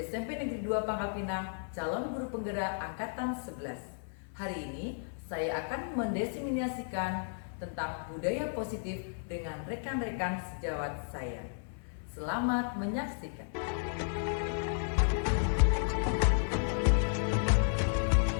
Negeri 2 Pangkal Pinang, calon guru penggerak angkatan 11. Hari ini saya akan mendiseminasikan tentang budaya positif dengan rekan-rekan sejawat saya. Selamat menyaksikan.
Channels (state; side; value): silent; right; 56 dB below the other